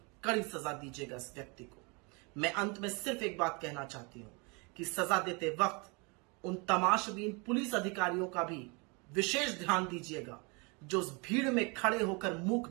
कड़ी सजा दीजिएगा इस व्यक्ति को। मैं अंत में सिर्फ एक बात कहना चाहती हूं कि सजा देते वक्त उन तमाशबीन पुलिस अधिकारियों का भी विशेष ध्यान दीजिएगा जो उस भीड़ में खड़े होकर मूक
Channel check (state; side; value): quieter; left; 30.6 dB